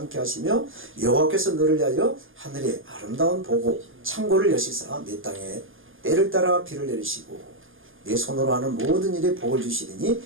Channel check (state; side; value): late; left; 0.59 ms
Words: 하시며 여호와께서 너를 위하여 하늘의 아름다운 보고 창고를 여시사 내 땅에 때를 따라 비를 내리시고 내 손으로 하는 모든 일에 복을 주시리니